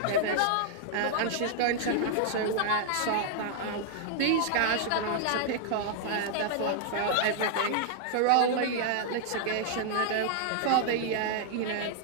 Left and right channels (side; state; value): both; different; correlation -0.01